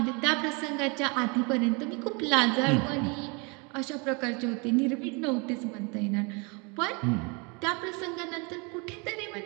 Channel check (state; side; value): quieter; left; 31.3 dB